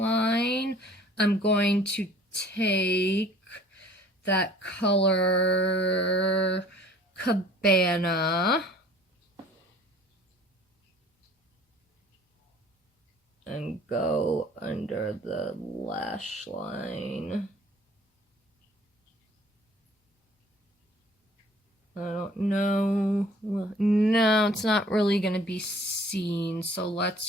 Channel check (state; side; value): normal; both; correlation 0.52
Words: I'm going to take that color Cabana and go under the lash line. I don't know. Well, no, it's not really going to be seen. So